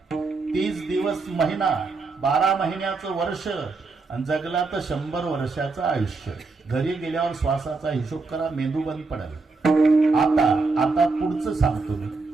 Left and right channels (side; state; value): left; quieter; 4.0 dB